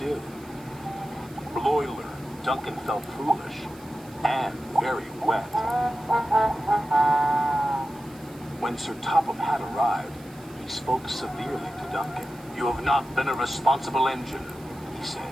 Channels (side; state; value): right; noise; hiss, 24 dB below the sound